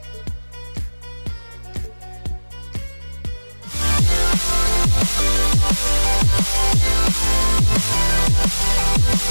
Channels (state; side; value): inverted; both; correlation -1.00